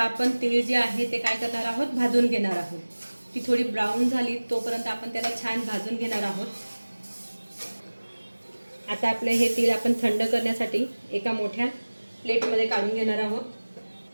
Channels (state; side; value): inverted; both; correlation -1.00